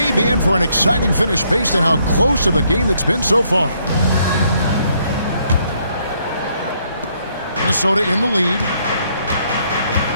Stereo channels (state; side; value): inverted; both; correlation -0.71